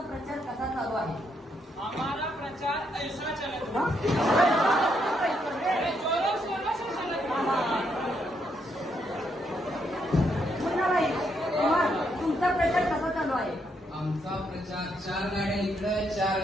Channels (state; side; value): normal; both; correlation 0.76